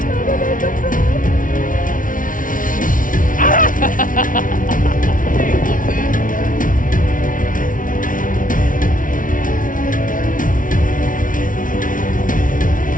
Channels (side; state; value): right; late; 0.38 ms